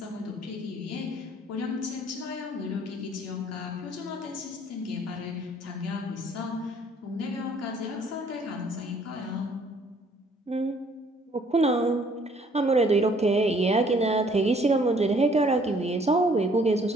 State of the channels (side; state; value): both; normal; correlation 0.60